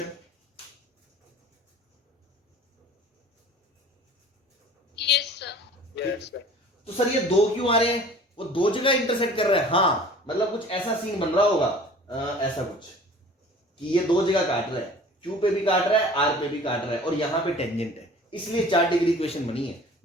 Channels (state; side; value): normal; both; correlation 0.46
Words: Yes sir. तो सर ये 2 क्यों आ रहे हैं, वो 2 जगह इंटरसेक्ट कर रहे हैं। हाँ मतलब कुछ ऐसा सीन बन रहा होगा, ऐसा कुछ कि ये 2 जगह काट रहा है, Q पे भी काट रहा है, R पे भी काट रहा है, और यहां पे टेंजेंट है, इसलिए 4 डिग्री इक्वेशन बनी है।